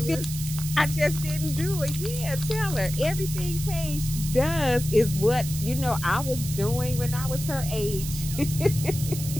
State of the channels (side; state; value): right; noise; hiss, 9 dB below the sound